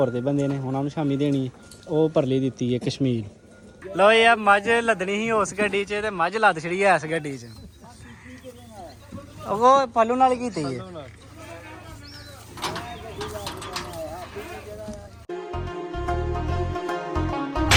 ਦੇ ਬੰਦੇ ਨੇ, ਉਹਨਾਂ ਨੂੰ ਸ਼ਾਮੀ ਦੇਣੀ ਹੈ। ਉਹ ਪਰਲੀ ਦਿੱਤੀ ਹੈ ਕਸ਼ਮੀਰ। ਲੋ ਇਹ ਮੱਝ ਲੱਦਣੀ ਸੀ ਉਸ ਗੱਡੀ 'ਚ ਤੇ ਮੱਝ ਲੱਦ ਛੜੀ ਐ ਇਸ ਗੱਡੀ 'ਚ। ਉਹ ਪੱਲੂ ਨਾਲ ਕੀਤੀ ਹੈ।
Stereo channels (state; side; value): identical; both; correlation 1.00